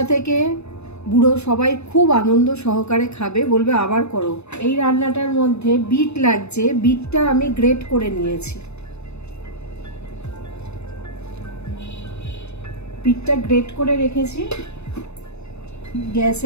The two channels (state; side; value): late; right; 0.80 ms